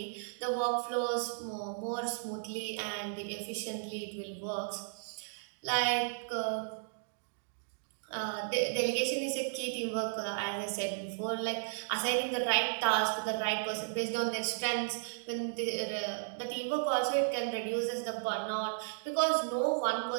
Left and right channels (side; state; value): left; silent; digital silence